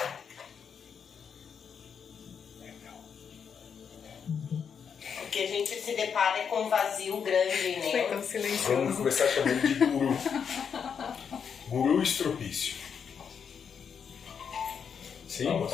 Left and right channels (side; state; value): right; quieter; 7.0 dB